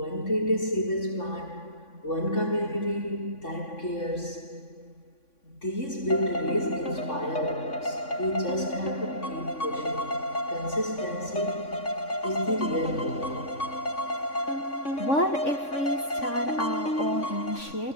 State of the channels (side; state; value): right; late; 3.5 ms